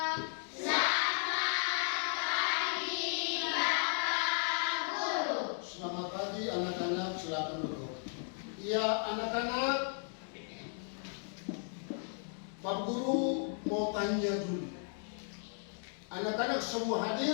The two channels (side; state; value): right; silent; 54 dB below the other